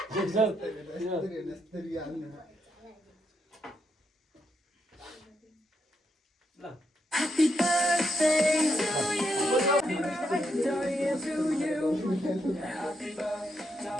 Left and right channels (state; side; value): normal; both; correlation 0.80